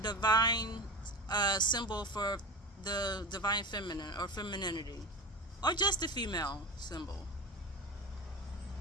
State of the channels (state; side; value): normal; both; correlation 0.28